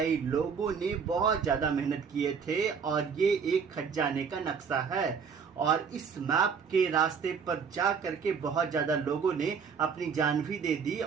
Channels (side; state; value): left; quieter; 6.3 dB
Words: लोगों ने बहुत ज्यादा मेहनत किए थे और ये एक खजाने का नक्शा है और इस मैप के रास्ते पर जा करके बहुत ज्यादा लोगों ने अपनी जान भी दे दी